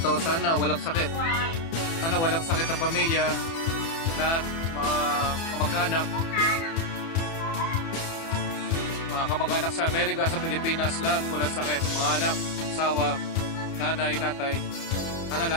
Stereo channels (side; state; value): right; late; 30 ms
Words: sana walang sakit. Sana walang sakit ang pamilya. Lahat, mga kamag-anak. Mga kamag-anak sa Amerika, sa Pilipinas, lahat walang sakit. Mga anak, asawa, nanay, tatay. Sana